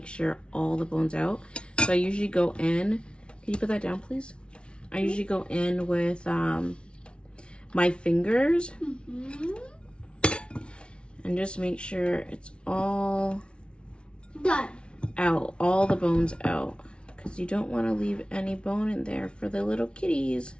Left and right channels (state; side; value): late; right; 0.058 ms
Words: sure all the bones out. So I usually go in. Can you put that down, please? I usually go in with my fingers and just make sure it's all Done. out, all the bones out, because you don't want to leave any bone in there for the little kitties.